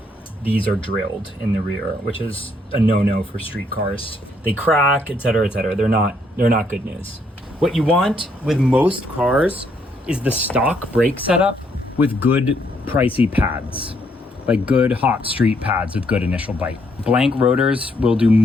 These are drilled in the rear, which is a no-no for street cars. They crack, etc., etc. They're not good news. What you want with most cars is the stock brake setup with good pricey pads, like good hot street pads with good initial bite. Blank rotors will do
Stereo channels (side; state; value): both; normal; correlation 0.71